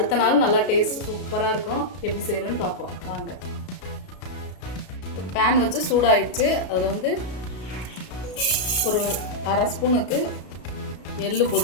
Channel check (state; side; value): late; right; 33 ms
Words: நாள் நல்லா டேஸ்ட் சூப்பராக இருக்கும். எப்படி செய்கிறேன்னு பார்ப்போம் வாங்க. பேன் வச்சு சூடாயிடுச்சு. அதில் வந்து ஒரு அரை ஸ்பூனுக்கு எள்ளு